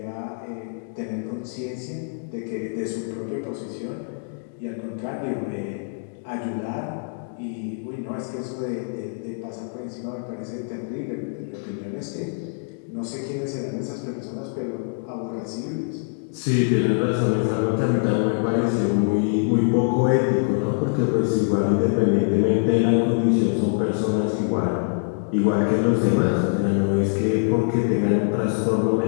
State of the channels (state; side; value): silent; right; digital silence